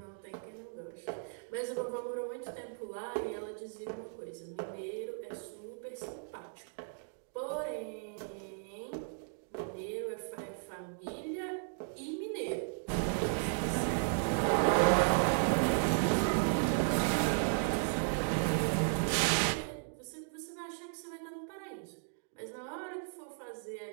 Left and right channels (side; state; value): left; silent; digital silence